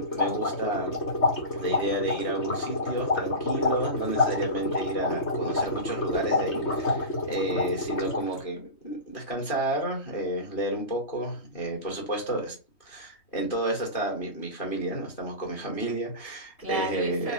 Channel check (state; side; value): late; right; 3.2 ms